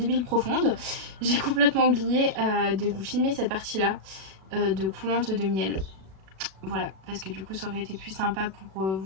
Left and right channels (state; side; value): late; left; 37 ms